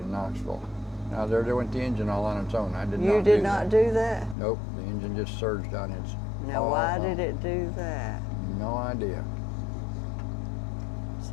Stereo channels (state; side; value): drops out; right; at 4.4 s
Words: Knoxville. Now there went the engine all on its own. I did not do that. You did not do that? Nope, the engine just surged on its own. Now why did it do that? No idea.